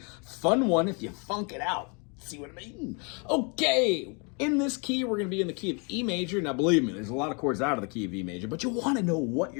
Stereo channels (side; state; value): right; quieter; 34.2 dB